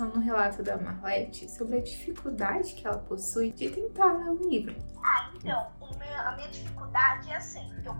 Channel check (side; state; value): both; inverted; correlation -1.00